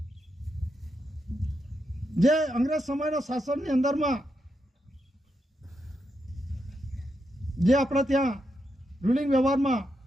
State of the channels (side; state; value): both; normal; correlation 0.83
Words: જે અંગ્રેજ સમયના શાસનની અંદરમાં જે આપણે ત્યાં રૂલિંગ વ્યવહારમાં